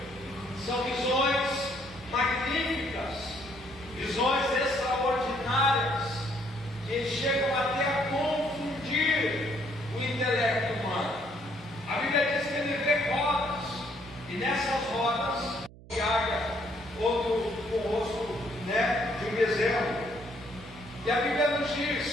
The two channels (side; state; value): right; noise; hum, 20 dB below the sound